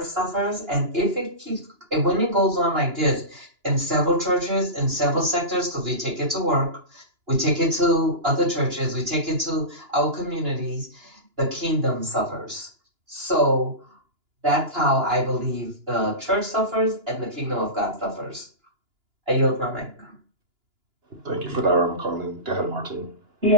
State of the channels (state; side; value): late; left; 2.9 ms